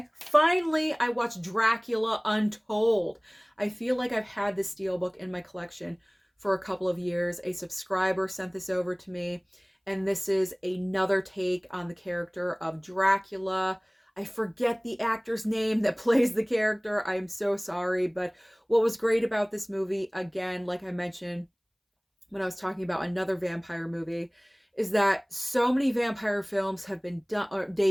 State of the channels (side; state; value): both; identical; correlation 1.00